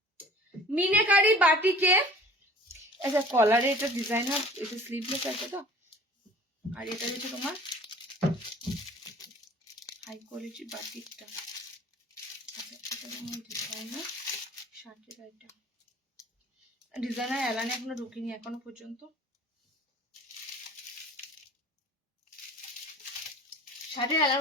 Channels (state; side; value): normal; both; correlation 0.46